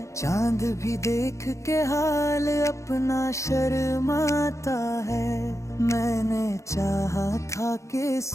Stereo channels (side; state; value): right; late; 0.15 ms